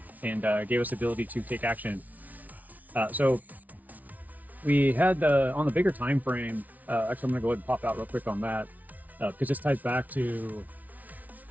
and gave us the ability to take action. So we had on the bigger time frame, actually I'm going to go ahead and pop out real quick on that because this ties back to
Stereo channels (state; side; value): late; left; 0.075 ms